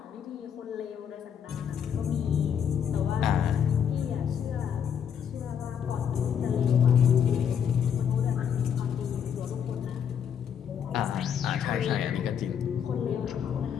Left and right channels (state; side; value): quieter; right; 8.2 dB